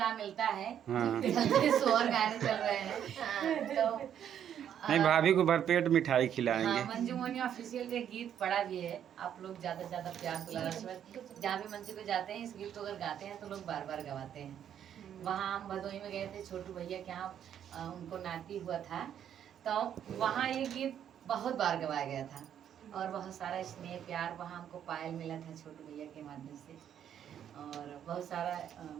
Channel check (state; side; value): quieter; left; 9.5 dB